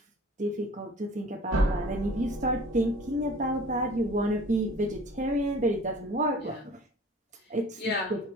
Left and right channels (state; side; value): normal; both; correlation 0.47